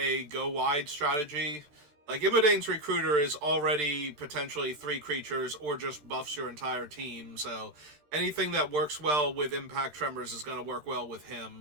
go-wide strategy. Like, Imodane's Recruiter is already potentially 3 creatures or just buffs your entire team, so anything that works well with Impact Tremors is going to work well with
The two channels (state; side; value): late; left; 13 ms